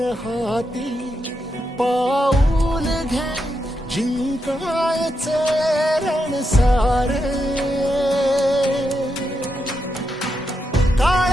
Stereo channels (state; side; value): normal; both; correlation 0.84